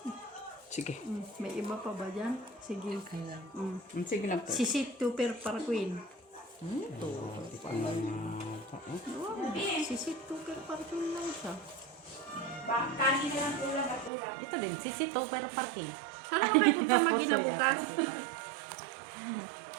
Sige. May iba pa ba dyan? Sige. Sige lang po. Sisit Tupper para Queen. Sisit Tupper para Queen lang siya. Kanin na lang ulam at ulam. Ito din, sisito pero parking. Saan ako kayo punta mag-ina bukas?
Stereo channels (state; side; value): drops out; left; at 14.1 s